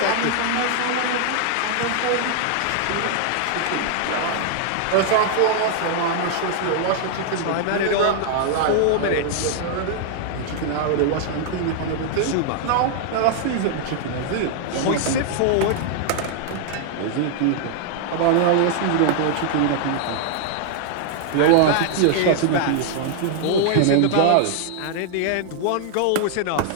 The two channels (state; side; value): different; both; correlation -0.01